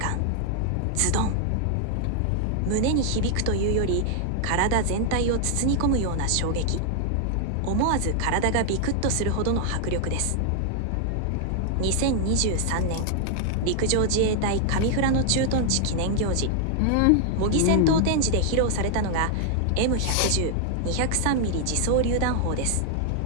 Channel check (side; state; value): both; different; correlation 0.00